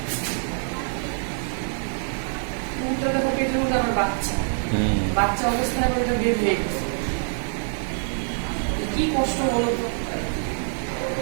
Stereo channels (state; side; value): silent; left; 62 dB below the other